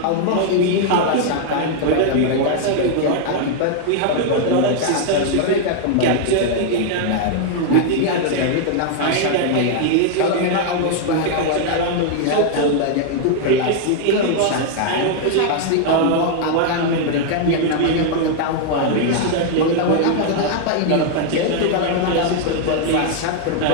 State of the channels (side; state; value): both; different; correlation 0.00